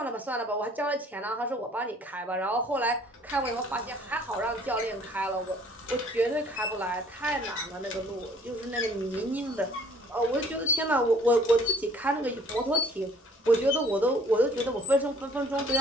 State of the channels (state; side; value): normal; both; correlation 0.57